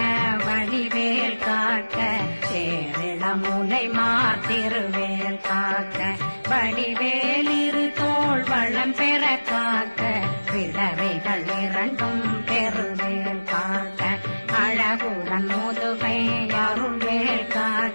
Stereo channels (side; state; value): both; inverted; correlation -1.00